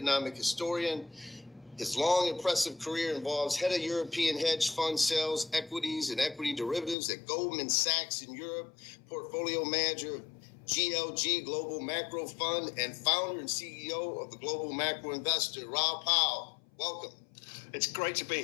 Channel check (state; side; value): drops out; right; at 7.0 s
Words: historian. His long, impressive career involves head of European hedge fund sales, equities, and equity derivatives at Goldman Sachs in Europe, portfolio manager of GLG Global Macro Fund, and founder and CEO of the Global Macro Investor. Raul Powell, welcome. It's great to be